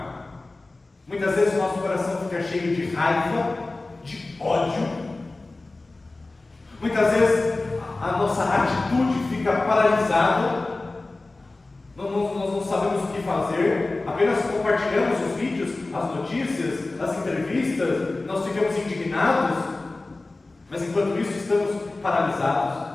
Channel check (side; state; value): right; quieter; 3.2 dB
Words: Muitas vezes o nosso coração fica cheio de raiva, de ódio. Muitas vezes a nossa atitude fica paralisada, nós não sabemos o que fazer, apenas compartilhamos os vídeos, as notícias, as entrevistas, nós ficamos indignados, mas enquanto isso estamos paralisados.